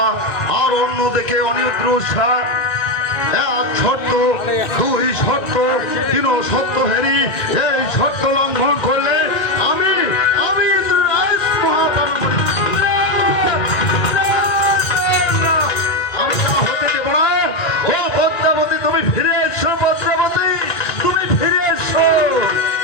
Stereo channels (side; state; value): right; late; 1.8 ms